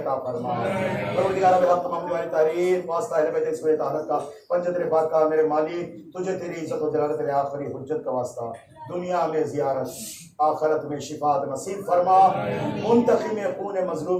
فرما. پروردگار بے حق محمد والی تحریر واسطہ اہل بیت اسمت طاہرت کا پنجتر پاک کا میرے مالک تجھے تیری عزت و جلالت تیرے آخری حجت کا واسطہ دنیا میں زیارت آخرت میں شفاعت نصیب فرما. منتقم خون مظلوم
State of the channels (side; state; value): both; identical; correlation 1.00